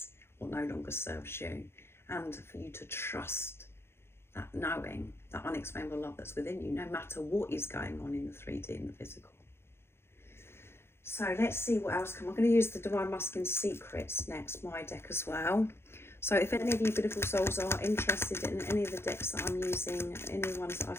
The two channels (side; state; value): right; late; 0.12 ms